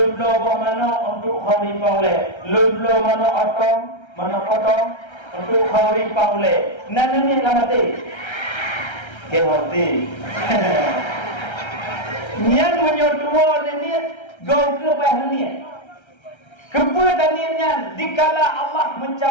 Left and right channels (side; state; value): right; late; 1.3 ms